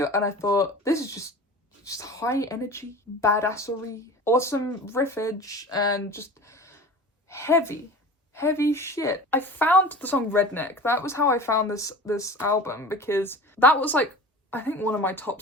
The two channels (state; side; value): normal; both; correlation 0.37